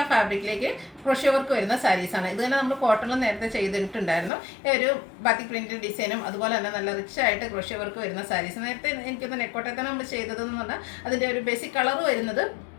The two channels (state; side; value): drops out; right; at 4.3 s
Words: ഫാബ്രിക്കിലേക്ക് ക്രോഷ്യോ വർക്ക് വരുന്ന സാരീസാണ്. ഇത് തന്നെ നമ്മൾ കോട്ടണിൽ നേരത്തെ ചെയ്തിട്ടുണ്ടായിരുന്നു. ഒരു ബാത്തിക് പ്രിന്റ് ഡിസൈനും അതുപോലെ തന്നെ നല്ല റിച്ച് ആയിട്ട് ക്രോഷ്യോ വർക്ക് വരുന്ന സാരീസ്. നേരത്തെ എനിക്കൊന്ന് നെറ്റ്കോട്ടയിൽ തന്നെ നമ്മൾ ചെയ്തതെന്ന് പറഞ്ഞാൽ അതിൻ്റെ ഒരു ബേസിക് കളർ വരുന്നത്